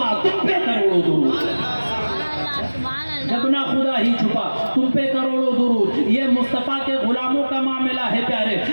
تم پہ کروڑوں درود، جب نہ خدا ہی چھپا تم پہ کروڑوں درود۔ یہ مصطفیٰ کے غلاموں کا معاملہ ہے پیارے،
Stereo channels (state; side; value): inverted; both; correlation -1.00